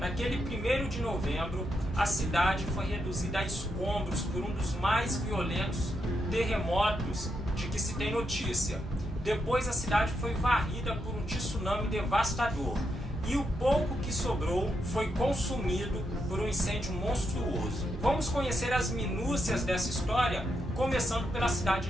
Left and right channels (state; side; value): normal; both; correlation 0.82